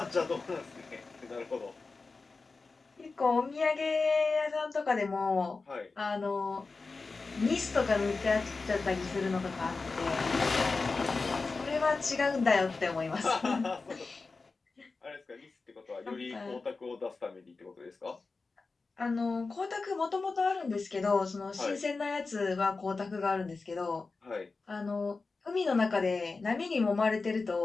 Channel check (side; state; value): right; quieter; 4.0 dB